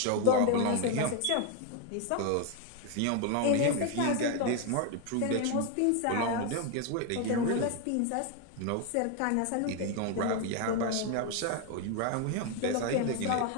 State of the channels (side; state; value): both; different; correlation 0.01